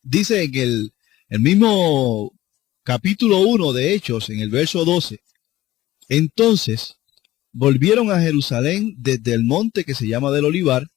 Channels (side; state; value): right; quieter; 15.8 dB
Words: Dice en el mismo capítulo 1 de Hechos, en el verso 12, entonces volvieron a Jerusalén desde el monte que se llama del Olivar,